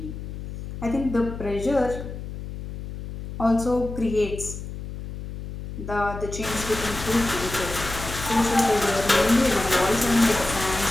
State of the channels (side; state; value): left; noise; hum, 9 dB below the sound